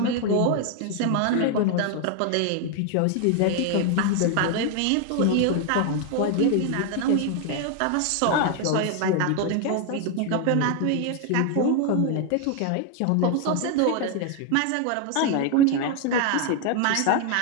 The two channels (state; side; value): different; both; correlation 0.01